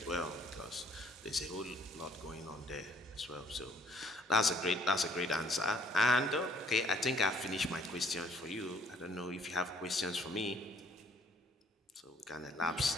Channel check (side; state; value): both; normal; correlation 0.61